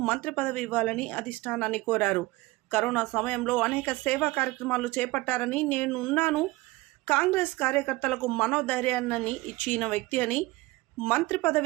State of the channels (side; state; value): left; quieter; 20.8 dB